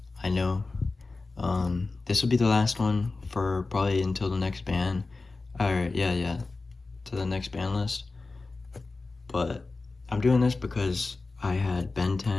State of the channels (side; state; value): right; quieter; 3.6 dB